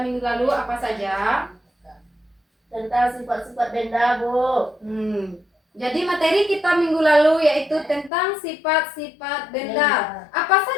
minggu lalu apa saja? Tentang sifat-sifat benda Bu. Jadi materi kita minggu lalu yaitu tentang sifat-sifat benda. Apa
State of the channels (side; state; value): right; drops out; at 8.1 s